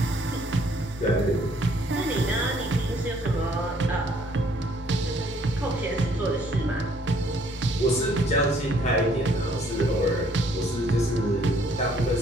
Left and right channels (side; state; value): both; normal; correlation 0.63